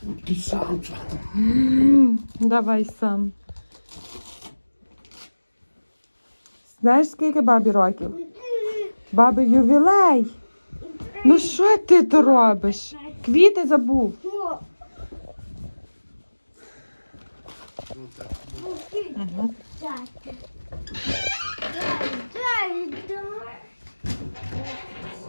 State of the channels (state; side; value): inverted; both; correlation -1.00